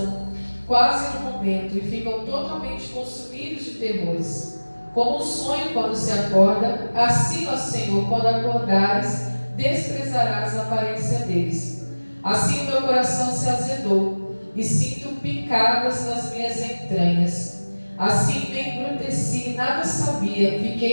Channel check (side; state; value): both; inverted; correlation -1.00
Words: quase no momento, e ficam totalmente consumidos de terrores. Como um sonho quando se acorda, assim, ó Senhor, quando acordares, desprezarás a aparência deles. Assim o meu coração se azedou, e sinto picadas nas minhas entranhas. Assim me embruteci e nada sabia,